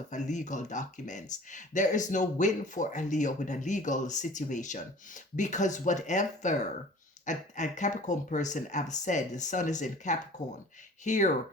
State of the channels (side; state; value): both; normal; correlation 0.46